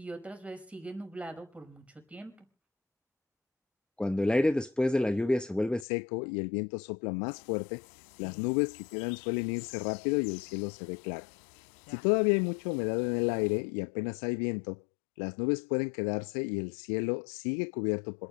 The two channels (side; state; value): right; drops out; at 5.9 s